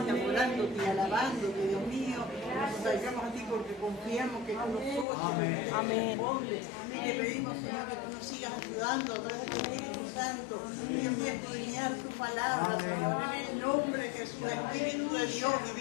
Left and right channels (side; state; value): right; drops out; at 5.1 s